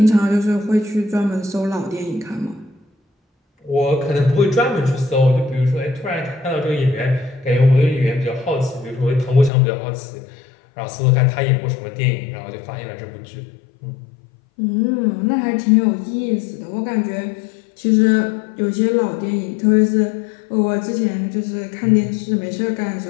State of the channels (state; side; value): drops out; right; at 9.5 s